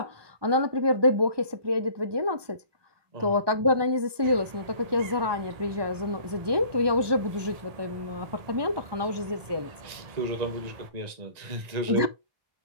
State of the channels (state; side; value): late; left; 1.2 ms